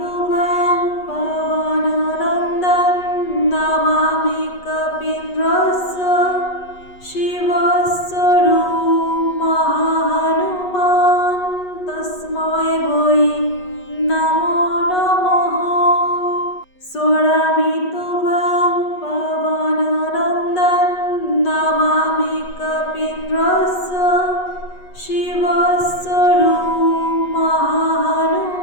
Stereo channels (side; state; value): right; late; 8.2 ms